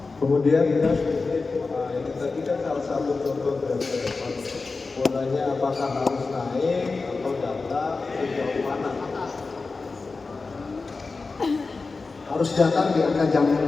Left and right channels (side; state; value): right; quieter; 4.0 dB